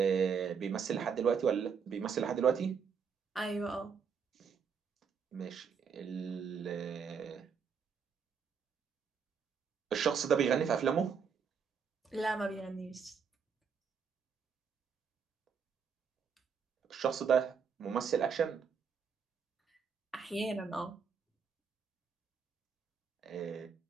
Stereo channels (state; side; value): quieter; left; 6.4 dB